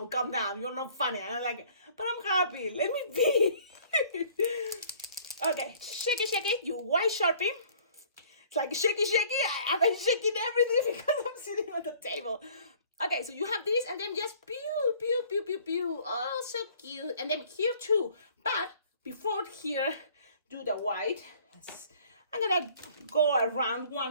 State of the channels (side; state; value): both; inverted; correlation -0.54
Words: calm down, you're not funny. And I'm like, but I'm happy, let me be. Okay, shaky, you white Sharpie. It's like shaky. I've been shaking everything because I'm sitting on the table. Okay, so you have this, and then just pew. Oh, so cute. And then here too. But before here, do the white. I'm gonna go around